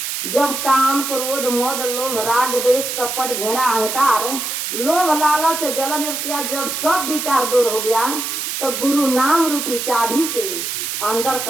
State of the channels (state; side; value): noise; right; hiss, 3 dB below the sound